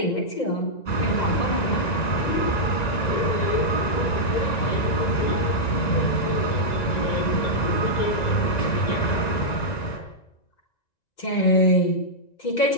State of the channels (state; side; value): late; right; 1.9 ms